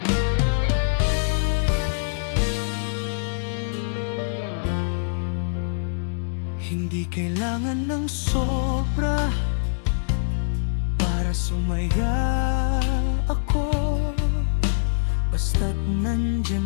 Hindi kailangan ng sobra para sumaya ako. Basta't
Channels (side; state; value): right; silent; digital silence